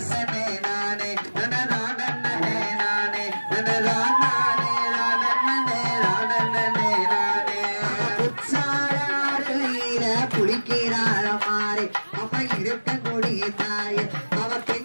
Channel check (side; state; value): both; inverted; correlation -1.00